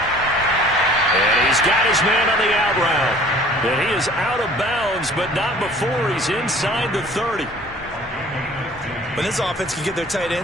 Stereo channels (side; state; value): both; normal; correlation 0.50